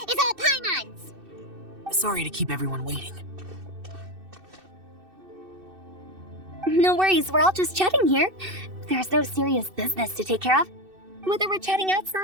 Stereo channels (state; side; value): late; left; 2.6 ms